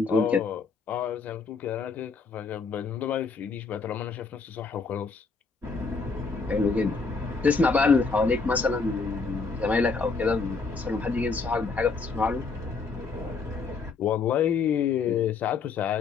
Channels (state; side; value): quieter; right; 4.6 dB